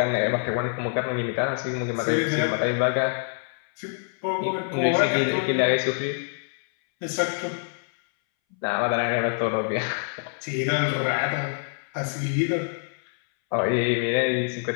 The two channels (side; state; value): right; silent; 60 dB below the other